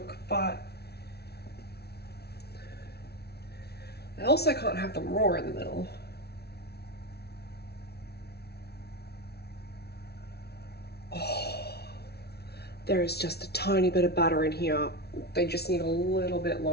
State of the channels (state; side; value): late; right; 0.47 ms